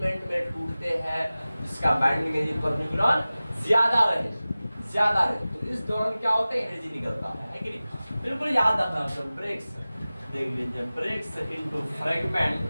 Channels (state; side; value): inverted; both; correlation -0.97